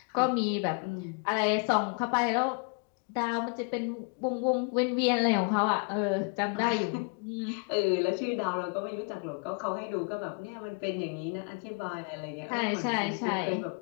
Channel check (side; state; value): right; quieter; 36.7 dB